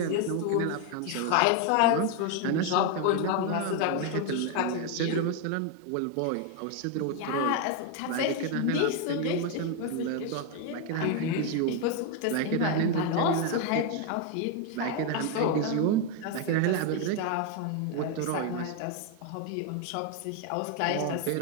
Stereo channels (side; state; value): both; different; correlation 0.01